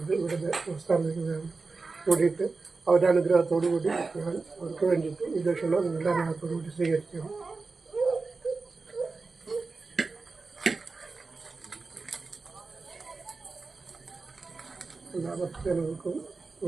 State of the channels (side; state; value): left; quieter; 4.0 dB